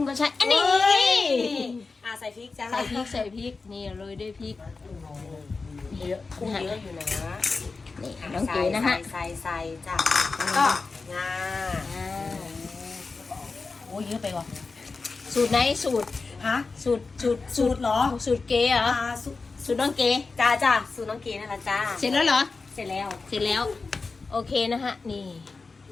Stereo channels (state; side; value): quieter; right; 4.2 dB